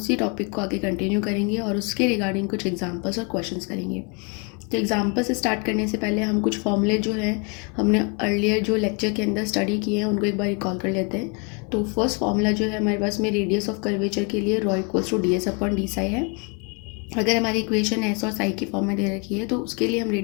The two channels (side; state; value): right; quieter; 33.1 dB